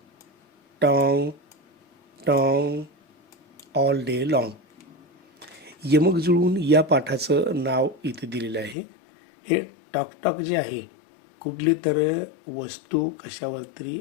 tong, tong, all day long. यमक जुळून या पाठाचं नाव इथे दिलेलं आहे. हे टॉक टॉक जे आहे, कुठली तर वस्तू कशावर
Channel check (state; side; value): drops out; right; at 8.8 s